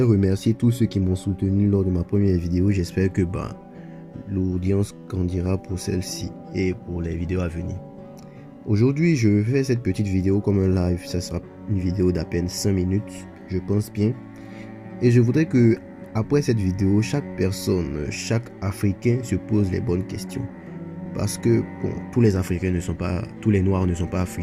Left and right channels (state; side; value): identical; both; correlation 1.00